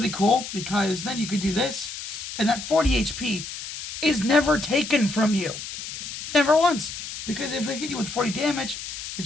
cool, because then you could do this, and that 40 HP is never taken from you. Never once. Because if they hit you with 40 damage, they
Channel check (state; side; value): noise; left; hiss, 9 dB below the sound